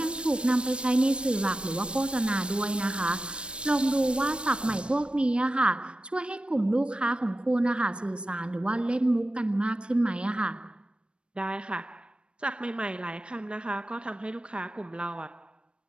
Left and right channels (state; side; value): late; left; 0.057 ms